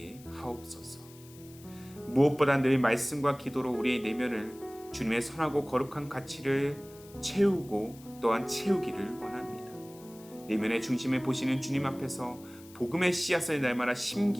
하옵소서. 무엇보다 늘 말씀과 기도로 우리의 내면을 주님의 선하고 거룩한 가치를 채우고 또한 채우기를 원합니다. 내면의 중심을 보시는 주님 앞에서 복음의 씨앗을 날마다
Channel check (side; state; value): left; noise; hiss, 22 dB below the sound